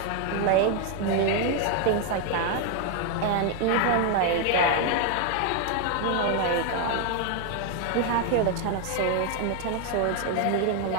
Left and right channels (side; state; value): both; different; correlation 0.00